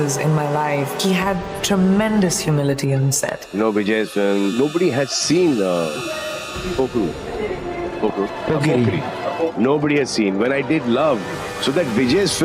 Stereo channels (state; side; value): identical; both; correlation 1.00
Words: in my life. He had tremendous humility on set. Vijay's film, nobody has seen Pokru. Nobody has seen. When I did Love, so that Vijay's